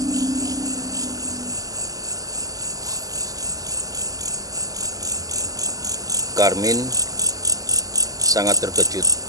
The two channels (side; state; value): left; late; 0.17 ms